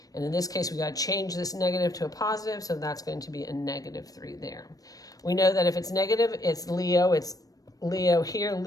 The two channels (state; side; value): late; right; 0.18 ms